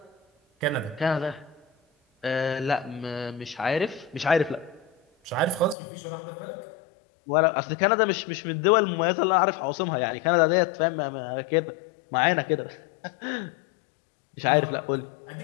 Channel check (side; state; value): right; drops out; at 5.8 s